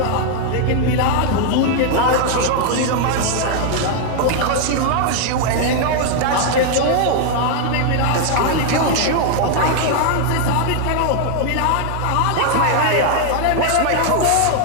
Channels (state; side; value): different; both; correlation 0.00